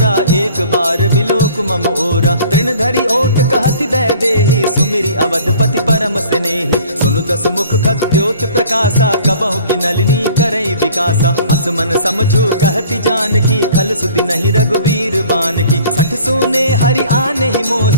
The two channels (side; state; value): both; inverted; correlation -0.50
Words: एक बार बिलोक मम ओरा। तृण धरि ओट कहति दय देहि, सुमिरि अवधपति परम स्नेही। सुनु दस मुख खद्योत प्रकाशा, कबहु कि नलिनी करई विकासा। असमन समझो कहति जानकी, खल सुधि नहीं रघुबीर बान की। सठ सोने हरि आने ही